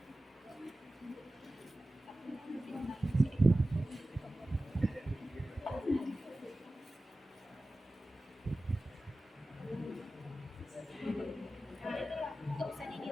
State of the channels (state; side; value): normal; both; correlation 0.95